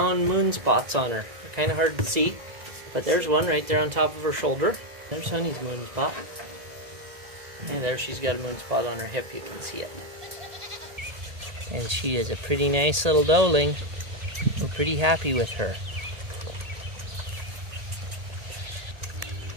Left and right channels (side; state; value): left; late; 1.8 ms